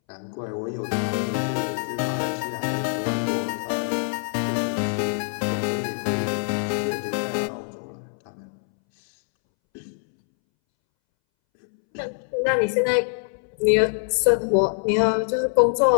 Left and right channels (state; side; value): silent; right; 62 dB below the other